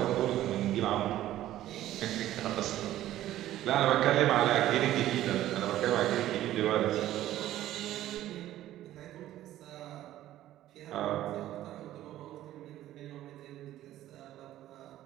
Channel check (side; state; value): left; quieter; 13.7 dB